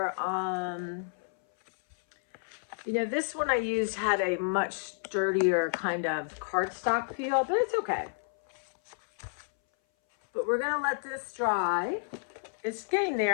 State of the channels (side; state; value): right; silent; 58 dB below the other